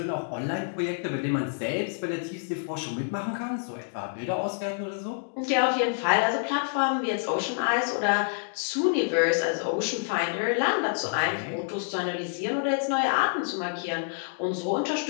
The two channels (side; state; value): right; silent; digital silence